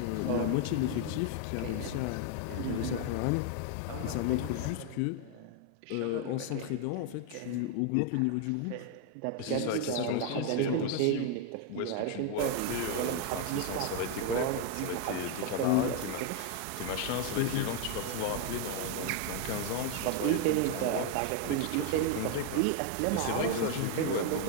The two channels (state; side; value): different; both; correlation 0.00